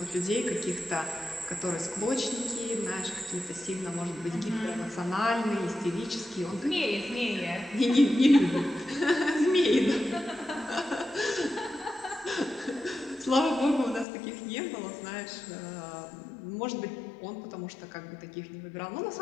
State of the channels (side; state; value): right; drops out; at 14.1 s